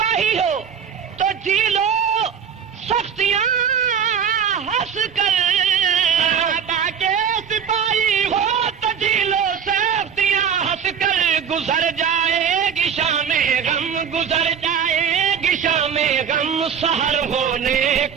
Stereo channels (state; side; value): quieter; left; 7.6 dB